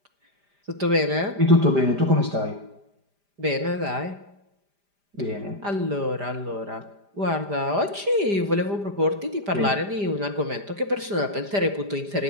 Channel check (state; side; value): late; left; 5.0 ms